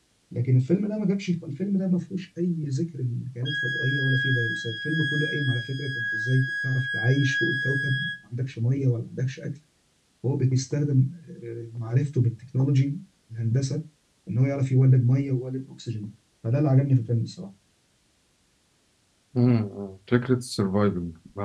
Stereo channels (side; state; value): both; identical; correlation 1.00